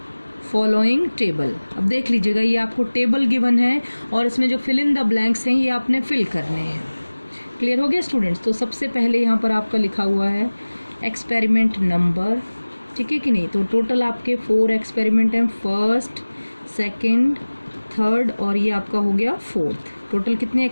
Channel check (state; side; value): inverted; both; correlation -1.00